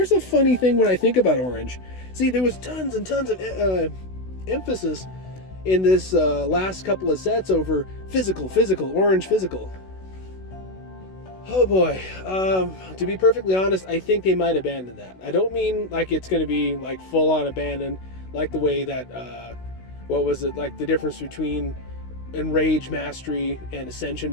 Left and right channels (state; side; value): late; right; 16 ms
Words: a funny thing when I think about orange. See, there was tons and tons of emphasis in this last couple of sets over physical, orange physical. Oh boy, to be perfectly honest, I think they might abandon that. I don't mean like it's going to be like full on abandoned, like the way that, what was it, like the difference between enrage mastery and ascension